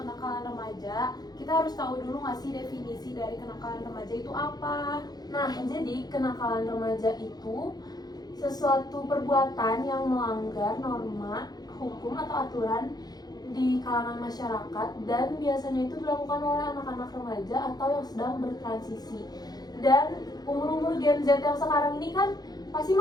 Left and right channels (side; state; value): right; late; 0.19 ms